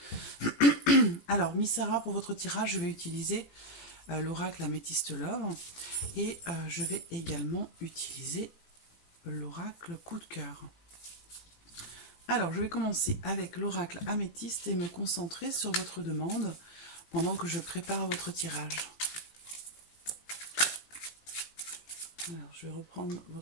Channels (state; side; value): late; right; 18 ms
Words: Alors Miss Sarah, pour votre tirage, je vais utiliser l'oracle Améthyste Love et je vais également utiliser l'oracle Coup de cœur. Alors, je vais commencer avec l'oracle améthyste et me concentrer sur votre demande pendant que je prépare votre tirage. Alors, je vais reprendre